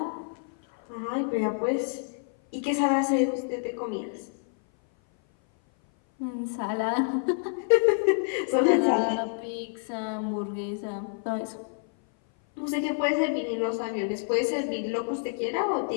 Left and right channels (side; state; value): right; silent; 57 dB below the other